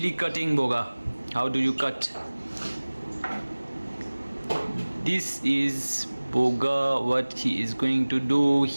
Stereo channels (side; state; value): both; inverted; correlation -1.00